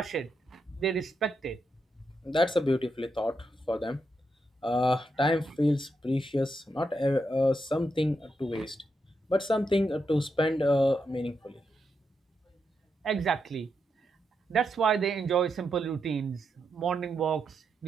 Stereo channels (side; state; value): both; normal; correlation 0.83